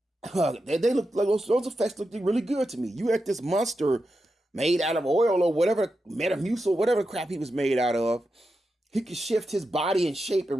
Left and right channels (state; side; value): normal; both; correlation 0.89